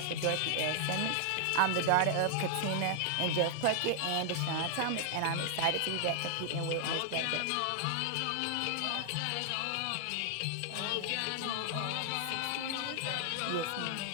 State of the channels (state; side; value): different; both; correlation 0.00